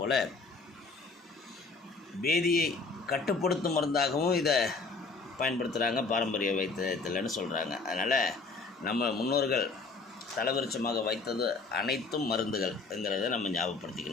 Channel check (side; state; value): right; quieter; 4.1 dB